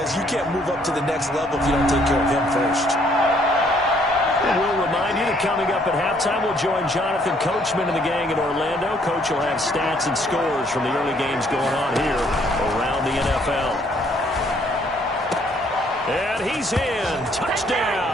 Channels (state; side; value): normal; both; correlation 0.65